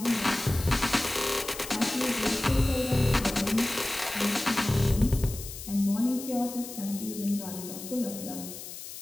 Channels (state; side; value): noise; left; hiss, 11 dB below the sound